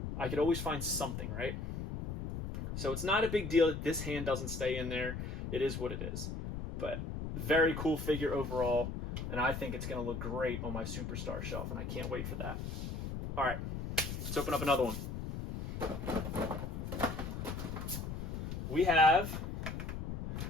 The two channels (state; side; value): noise; left; rumble, 5 dB below the sound